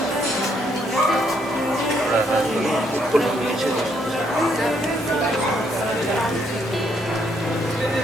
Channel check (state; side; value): normal; both; correlation 0.72